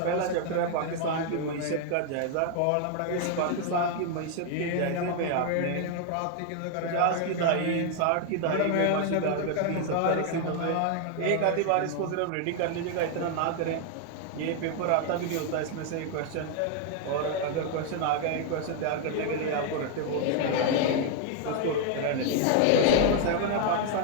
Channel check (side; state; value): both; different; correlation 0.00